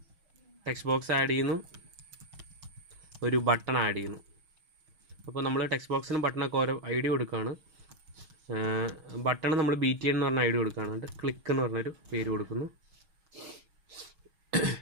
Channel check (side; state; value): left; late; 6.3 ms